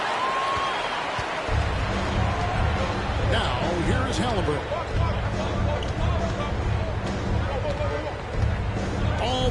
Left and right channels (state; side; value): identical; both; correlation 1.00